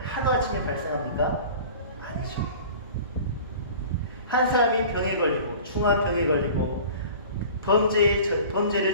하루아침에 발생합니까? 아니죠. 한 사람이 병에 걸리고, 중한 병에 걸리고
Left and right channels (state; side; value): inverted; both; correlation -0.42